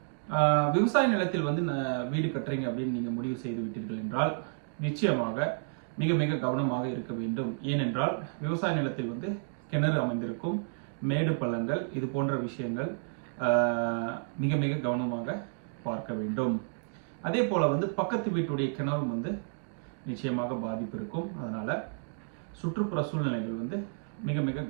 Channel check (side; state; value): left; silent; digital silence